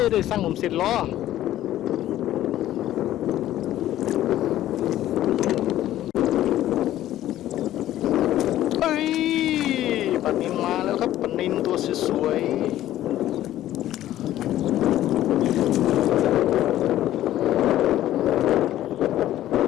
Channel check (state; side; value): quieter; right; 13.4 dB